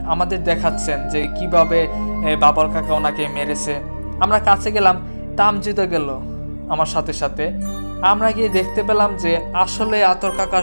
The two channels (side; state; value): both; inverted; correlation -1.00